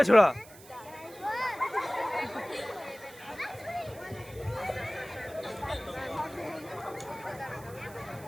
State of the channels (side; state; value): right; noise; hiss, 20 dB below the sound